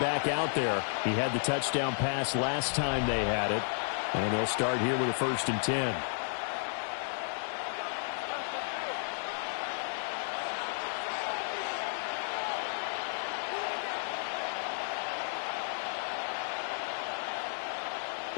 out there. He had the touchdown pass last time they had it. And they'll start here with a 1st and 10.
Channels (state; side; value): silent; right; digital silence